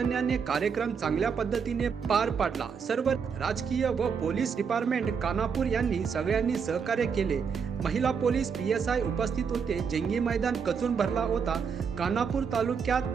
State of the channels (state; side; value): quieter; left; 6.3 dB